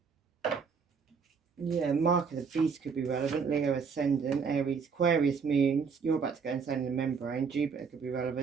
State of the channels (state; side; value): quieter; left; 5.8 dB